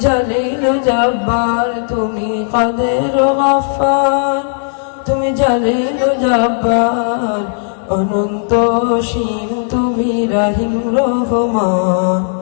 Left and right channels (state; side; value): silent; right; digital silence